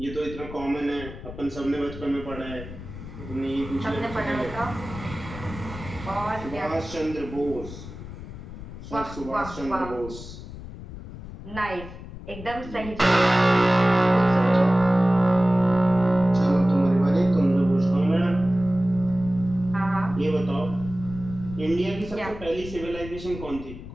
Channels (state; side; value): noise; left; rumble, 12 dB below the sound